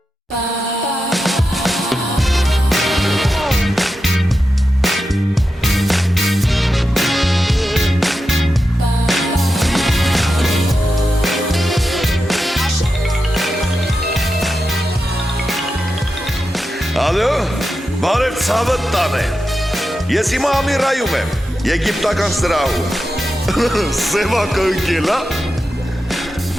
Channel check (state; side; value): normal; both; correlation 0.90